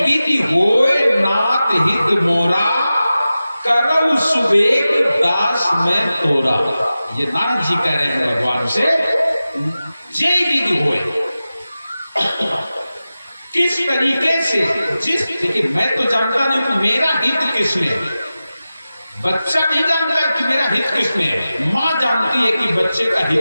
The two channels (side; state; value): both; inverted; correlation -0.94